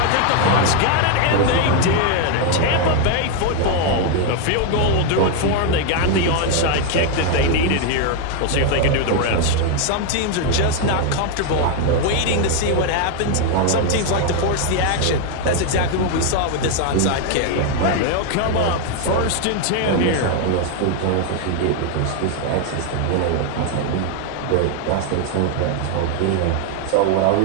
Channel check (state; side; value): different; both; correlation 0.01